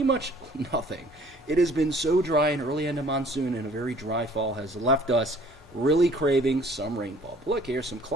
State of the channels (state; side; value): normal; both; correlation 0.55